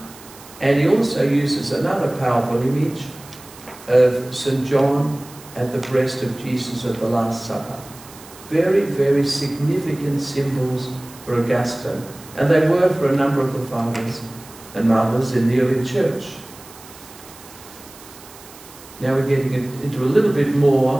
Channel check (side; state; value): right; noise; hiss, 20 dB below the sound